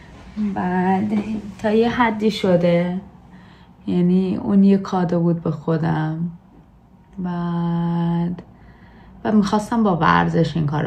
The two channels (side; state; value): both; identical; correlation 1.00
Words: بعد تا یه حدی شده، یعنی اون یه کادو بود به خودم. بعد و میخواستم با ورزش این